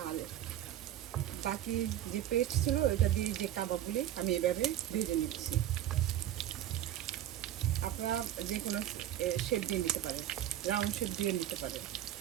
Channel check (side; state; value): left; quieter; 12.1 dB